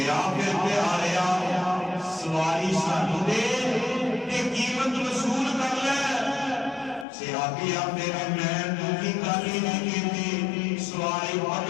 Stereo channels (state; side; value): drops out; right; at 7.1 s